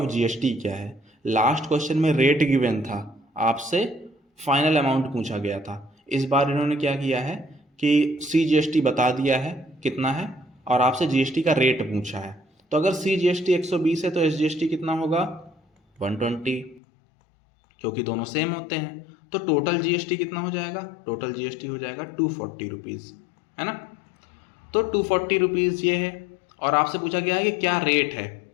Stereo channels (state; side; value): drops out; right; at 16.8 s